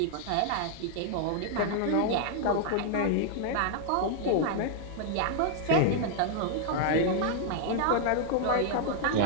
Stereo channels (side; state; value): both; different; correlation 0.00